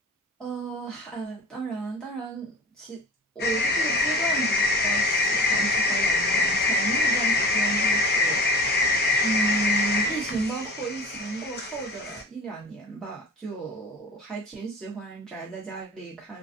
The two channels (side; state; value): both; normal; correlation 0.39